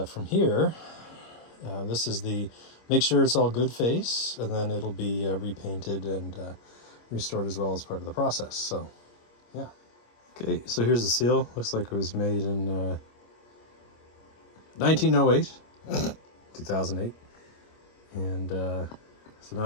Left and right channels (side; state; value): right; late; 25 ms